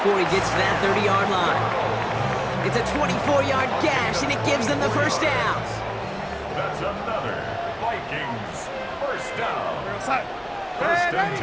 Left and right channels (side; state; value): both; identical; correlation 1.00